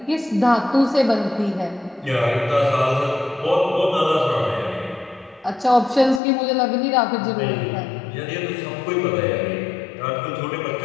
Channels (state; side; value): drops out; right; at 6.2 s